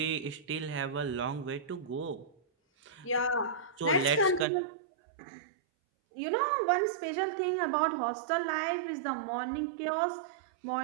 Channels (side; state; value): left; drops out; at 4.5 s